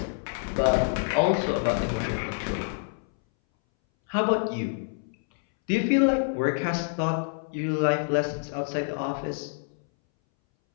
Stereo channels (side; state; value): right; silent; 60 dB below the other